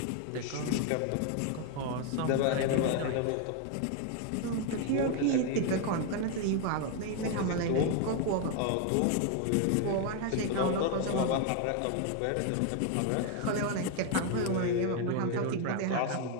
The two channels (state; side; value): different; both; correlation 0.01